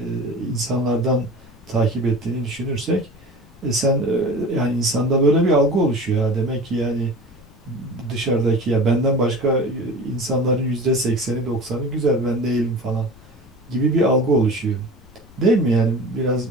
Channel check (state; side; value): noise; left; rumble, 25 dB below the sound